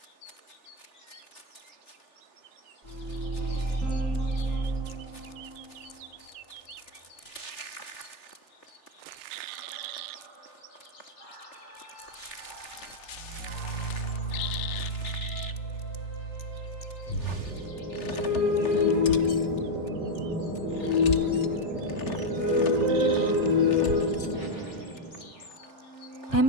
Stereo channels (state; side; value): late; right; 3.4 ms